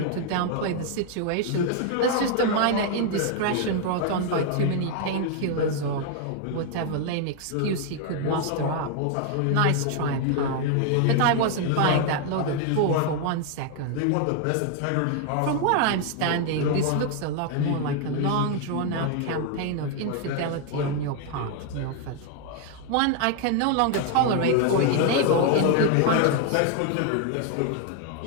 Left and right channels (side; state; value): both; different; correlation 0.00